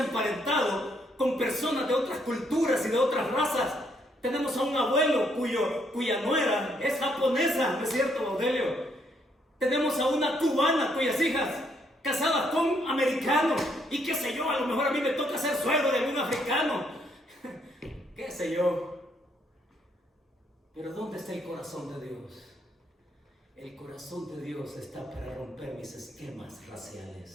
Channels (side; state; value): both; normal; correlation 0.71